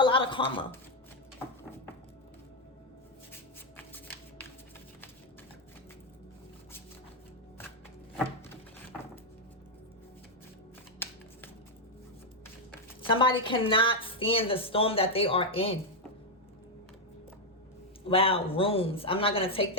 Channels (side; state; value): both; normal; correlation 0.01